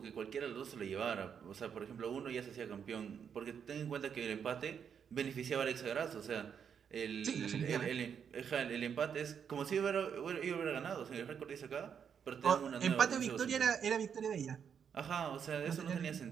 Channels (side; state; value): left; quieter; 7.5 dB